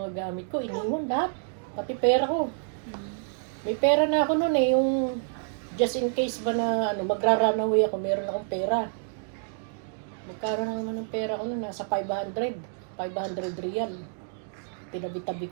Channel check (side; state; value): left; silent; digital silence